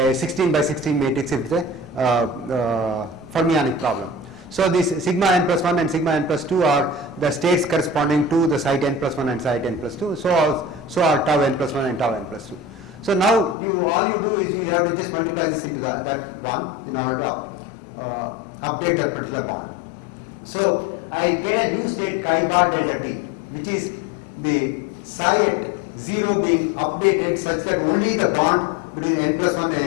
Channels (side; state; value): right; drops out; at 13.6 s